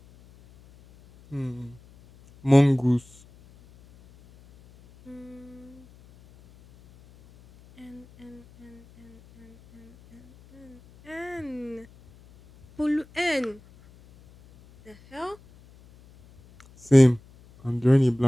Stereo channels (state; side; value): noise; left; hum, 26 dB below the sound